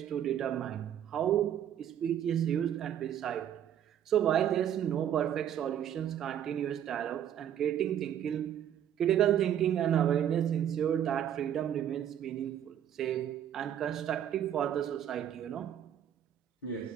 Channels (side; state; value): left; quieter; 10.1 dB